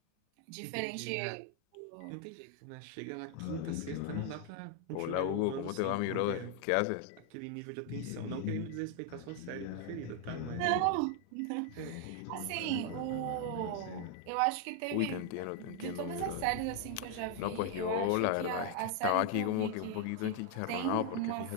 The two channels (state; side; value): different; both; correlation 0.00